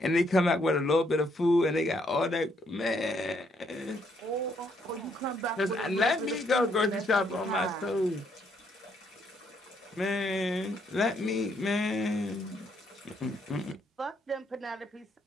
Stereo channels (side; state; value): both; normal; correlation 0.72